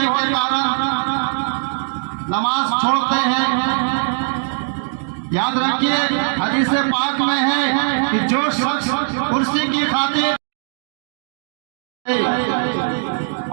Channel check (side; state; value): left; silent; digital silence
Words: کے کارن نماز چھوڑتے ہیں۔ یاد رکھیے، حدیث پاک میں ہے کہ جو شخص کرسی کی خاطر،